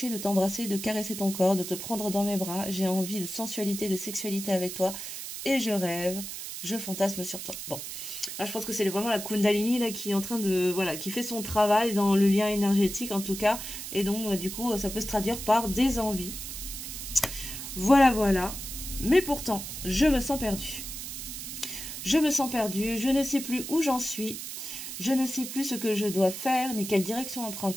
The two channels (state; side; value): noise; right; hiss, 8 dB below the sound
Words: de t'embrasser, de caresser ton corps, de te prendre dans mes bras, j'ai envie de sensualité, de sexualité avec toi, et je rêve, je fantasme sur toi. Bon, là je pense que c'est vraiment la Kundalini là, qui est en train de, voilà, qui fait son travail dans le lien énergétique en tout cas, et donc du coup ça peut se traduire par des envies. Voilà, voilà, mais pourtant, je me sens perdue. Je me sens perdue, je ne sais plus où j'en suis. Je ne sais plus ce que je dois faire, ni quelle direction